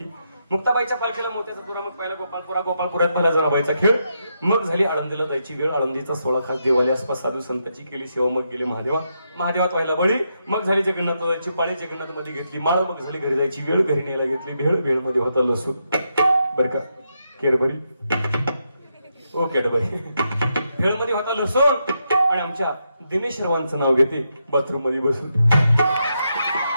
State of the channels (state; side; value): inverted; both; correlation -0.82